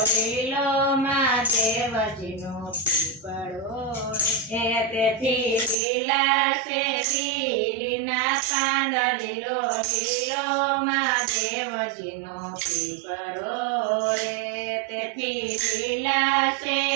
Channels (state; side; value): drops out; left; at 5.8 s